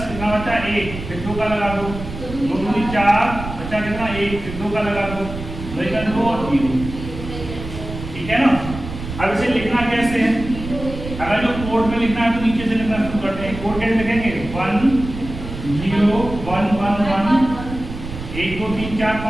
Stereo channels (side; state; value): right; noise; rumble, 9 dB below the sound